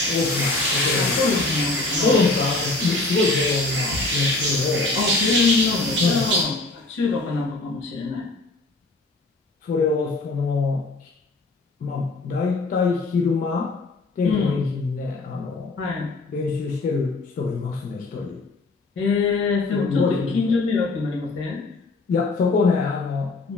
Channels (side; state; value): right; quieter; 3.2 dB